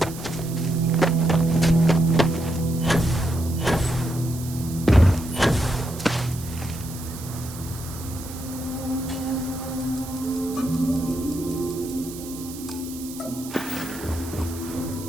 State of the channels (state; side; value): noise; right; hiss, 14 dB below the sound